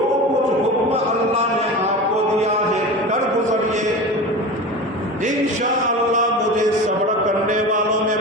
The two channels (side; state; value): both; normal; correlation 0.30